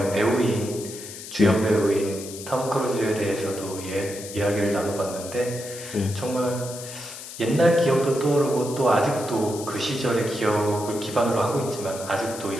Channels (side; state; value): left; noise; hiss, 12 dB below the sound